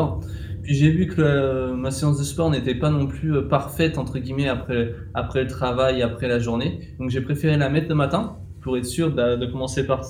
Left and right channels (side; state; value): both; identical; correlation 1.00